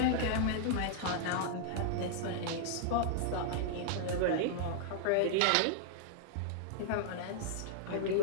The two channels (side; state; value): both; different; correlation 0.00